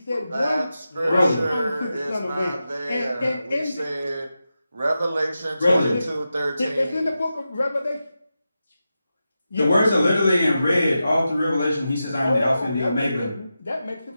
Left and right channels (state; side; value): inverted; both; correlation -0.91